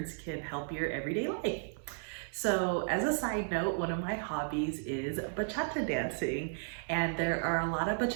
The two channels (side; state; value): left; silent; 55 dB below the other